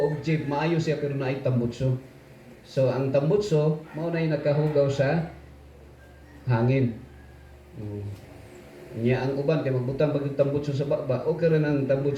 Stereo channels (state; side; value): identical; both; correlation 1.00